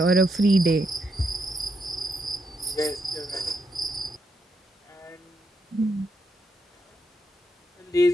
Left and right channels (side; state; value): both; normal; correlation 0.80